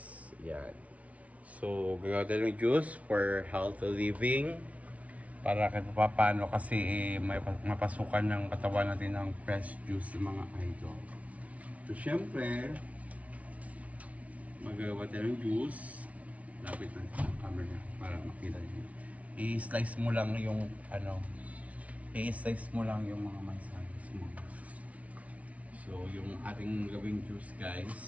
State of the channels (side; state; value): left; late; 0.066 ms